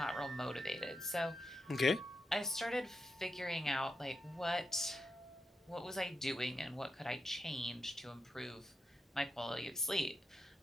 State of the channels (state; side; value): normal; both; correlation 0.86